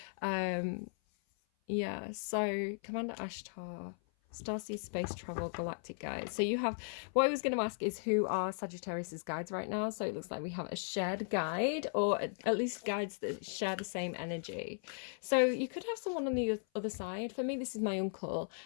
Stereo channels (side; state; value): right; silent; 53 dB below the other